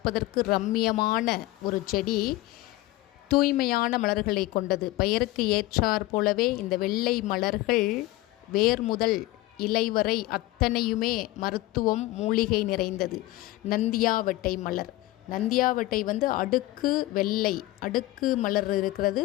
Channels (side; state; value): right; quieter; 18.0 dB